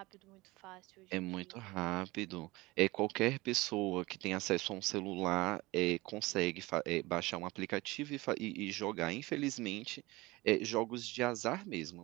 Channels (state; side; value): quieter; left; 21.6 dB